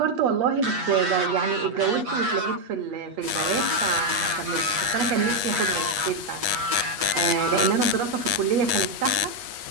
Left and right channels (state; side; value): late; left; 8.3 ms